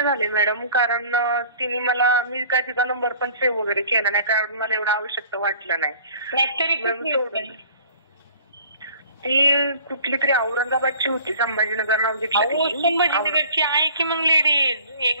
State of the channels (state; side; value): inverted; both; correlation -0.49